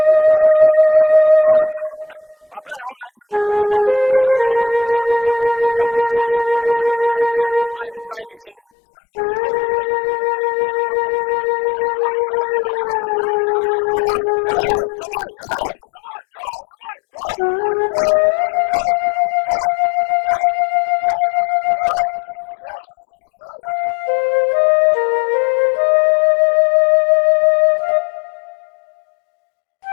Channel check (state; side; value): drops out; right; at 8.6 s